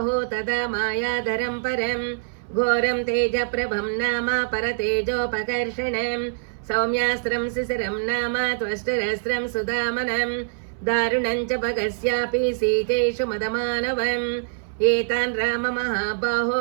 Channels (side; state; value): left; silent; 61 dB below the other